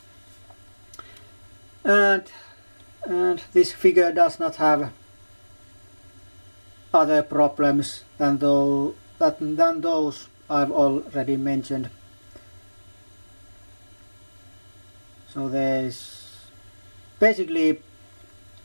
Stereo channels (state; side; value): inverted; both; correlation -1.00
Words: and this figure does not have other problems than those I've already mentioned. So there's basically